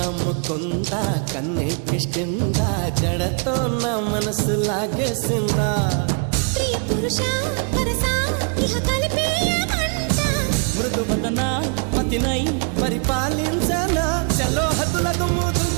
ముకుంద కన్నెక్కిష్టిందా జడతో నా మనసు లాగేసిందా ప్రియ పురుష వరస ఇహ కలిపేయమంట మృదు వదన పతినై పరిపాలించనా చలో హద్దులకు మూతులు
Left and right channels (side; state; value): left; quieter; 39.1 dB